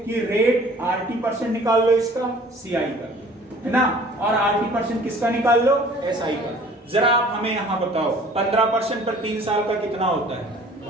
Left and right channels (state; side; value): normal; both; correlation 0.51